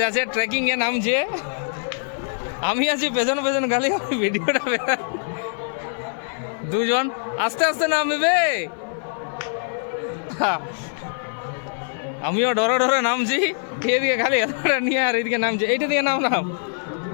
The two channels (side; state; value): right; silent; 59 dB below the other